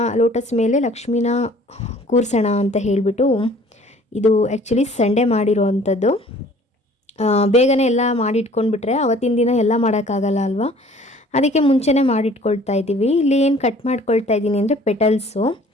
ಲೋಟಸ್ ಮೇಲೆ ಲಕ್ಷ್ಮಿನ ಕೂರಿಸೋಣ ಅಂತ ಹೇಳಿಬಿಟ್ಟು, ಇದು ಆ್ಯಕ್ಚುಲಿ ಸಂಡೇ ಮಾಡಿರೋ ಅಂಥದ್ದು. ಬೇಗನೆ ಎಲ್ಲ ಮಾಡಿಟ್ಕೊಂಡ್ಬಿಟ್ರೆ ಅವತ್ತಿನ ದಿನ ಎಲ್ಲ ಮಾಡೋಕ್ಕಾಗಲ್ಲ ಅಲ್ವಾ, ಅದಕ್ಕೆ ಮುಂಚೆನೇ ಮಾಡಿಟ್ಕೊಳ್ತಾ ಇದ್ದೀವಿ. ಇಲ್ಲಿ ಏನು ಕಟ್ ಮಾಡ್ಕೊಳ್ತಾ ಇದ್ದೀನಿ ಅಂದರೆ ಪೆಟಲ್ಸು.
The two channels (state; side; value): normal; both; correlation 0.52